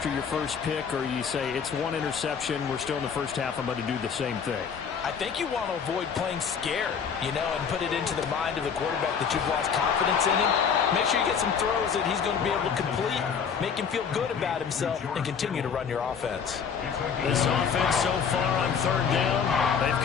your first pick, or you say it's one interception, we're still in the first half, I'm going to do the same thing? I think you want to avoid playing scared, and put it into the mind of the quarterback that you've lost confidence in him. Make sure you get some throws that he's going to be able to complete, make him feel good about himself, and continue to run your offense. This offense so far on third down, they've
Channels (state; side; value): quieter; right; 6.7 dB